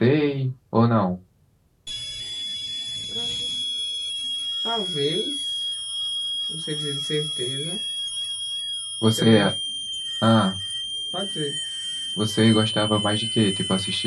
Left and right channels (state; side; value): identical; both; correlation 1.00